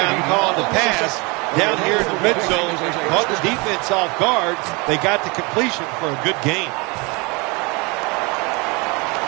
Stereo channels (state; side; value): quieter; left; 28.0 dB